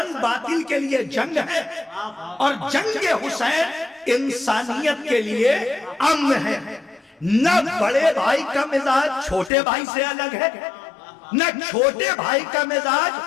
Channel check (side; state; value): right; drops out; at 9.5 s